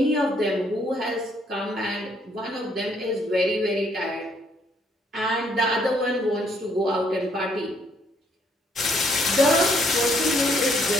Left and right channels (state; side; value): normal; both; correlation 0.68